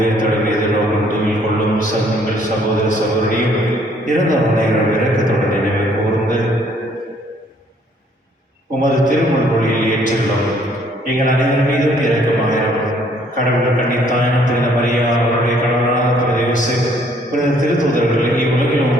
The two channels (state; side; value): normal; both; correlation 0.63